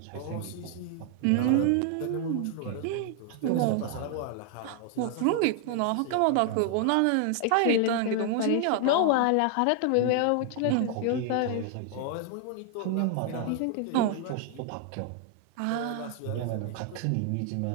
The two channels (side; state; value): both; different; correlation 0.00